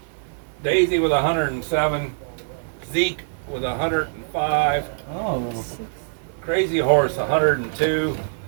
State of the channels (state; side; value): silent; left; digital silence